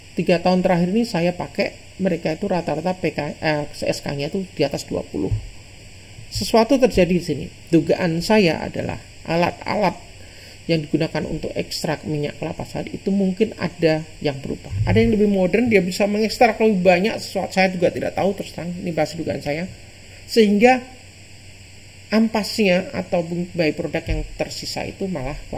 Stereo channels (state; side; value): identical; both; correlation 1.00